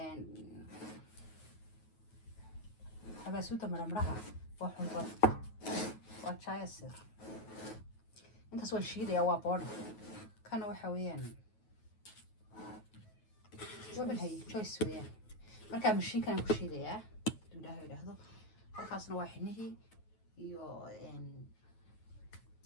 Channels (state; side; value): late; right; 9.3 ms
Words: حبسوته مرمرها وحنظر وشاي السر انت سوى الشيء ده يا بورد كانوا حويان ومن هي شوي سويان مركب مشي كان كل شيء ده ده هذا خاصنا واحد iyo